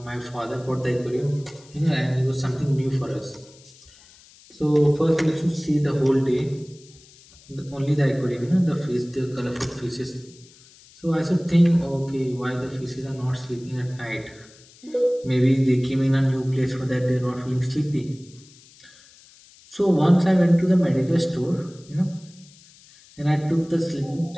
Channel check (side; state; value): left; noise; hiss, 25 dB below the sound